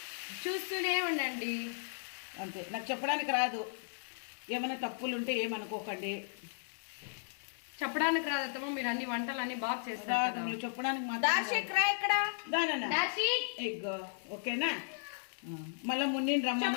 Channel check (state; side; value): silent; right; 54 dB below the other